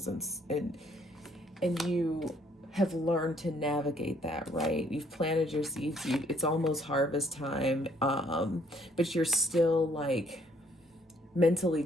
and you have learned to navigate that, right? You've planted your seeds. It's almost harvest time, but you're still like mentally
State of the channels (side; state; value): both; normal; correlation 0.64